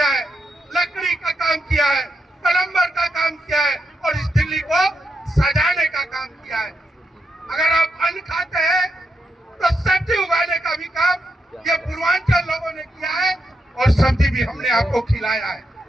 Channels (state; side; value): normal; both; correlation 0.84